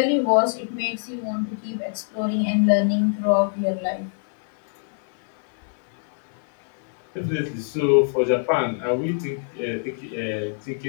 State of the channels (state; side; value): silent; right; digital silence